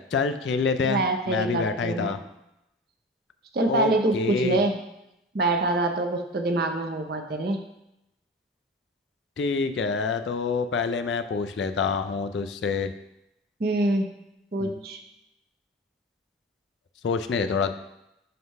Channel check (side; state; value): both; normal; correlation 0.31